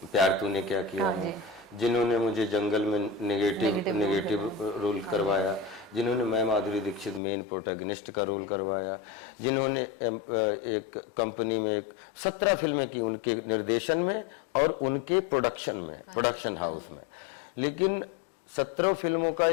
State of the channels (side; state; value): right; drops out; at 7.2 s